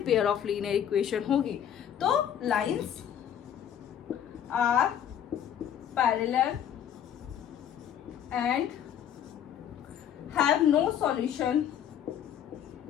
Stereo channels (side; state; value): right; quieter; 9.5 dB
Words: pair of linear equation होगी। तो lines are parallel and have no solution